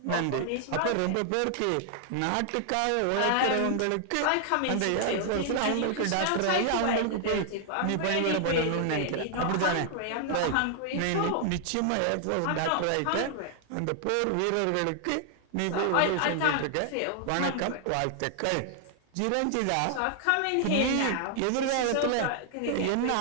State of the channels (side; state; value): both; different; correlation 0.00